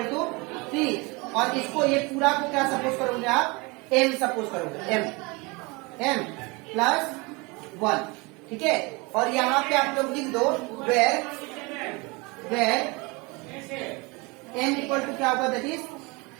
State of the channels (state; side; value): quieter; left; 26.7 dB